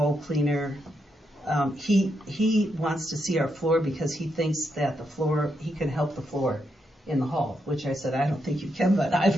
cleaner. He wants to see our floor because he thinks that he can help the floor in the hall, which I said, I don't think you can, but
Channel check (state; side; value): normal; both; correlation 0.81